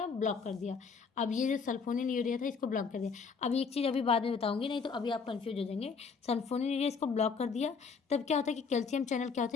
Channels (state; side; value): quieter; right; 5.4 dB